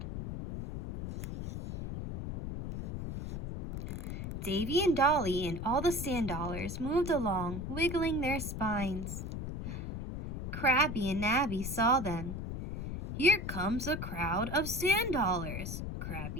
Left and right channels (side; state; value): left; noise; rumble, 5 dB below the sound